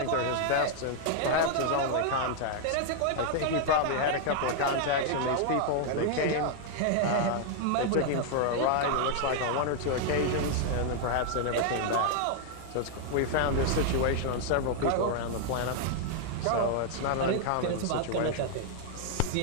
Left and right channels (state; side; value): different; both; correlation 0.00